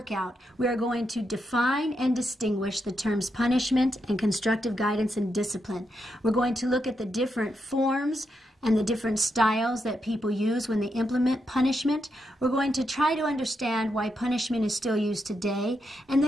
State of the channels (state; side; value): normal; both; correlation 0.83